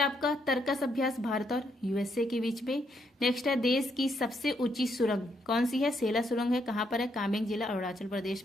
आपका तर्कस अभ्यास भारत और USA के बीच में। नेक्स्ट है देश की सबसे ऊंची सुरंग कौन सी है? सेला सुरंग है। कहाँ पर है? कामेंग जिला अरुणाचल प्रदेश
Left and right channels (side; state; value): both; normal; correlation 0.75